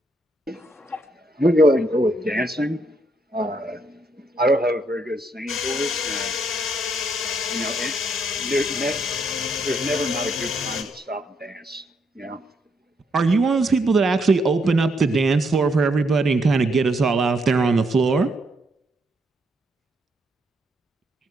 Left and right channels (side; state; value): both; normal; correlation 0.74